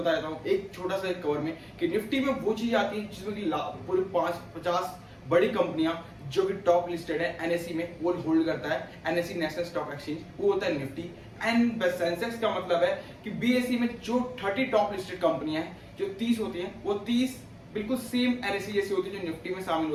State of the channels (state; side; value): identical; both; correlation 1.00